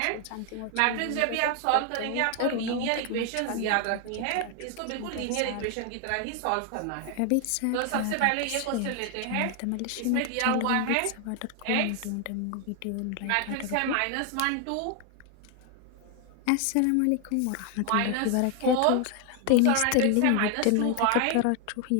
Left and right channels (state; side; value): different; both; correlation 0.00